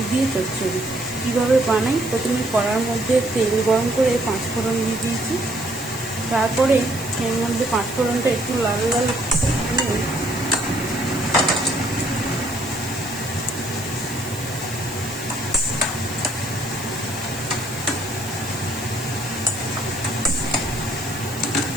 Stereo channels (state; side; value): noise; right; hiss, 13 dB below the sound